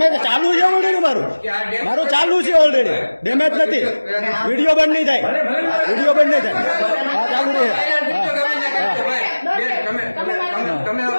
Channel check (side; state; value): both; inverted; correlation -1.00